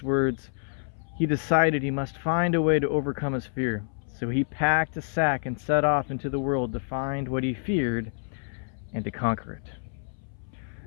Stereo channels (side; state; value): right; silent; 60 dB below the other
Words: words. He decided he must find a way to overcome his fear. So he packed a sack and set off into the world to find what he feared and to conquer it.